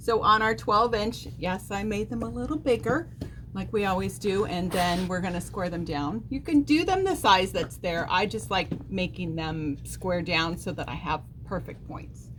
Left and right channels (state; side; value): identical; both; correlation 1.00